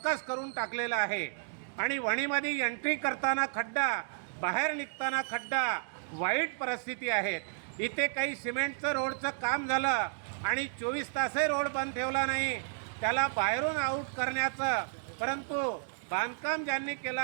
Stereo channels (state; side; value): silent; left; digital silence